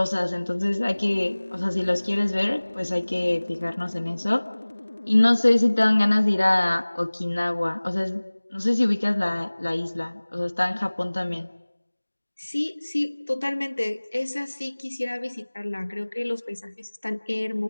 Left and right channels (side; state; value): both; inverted; correlation -1.00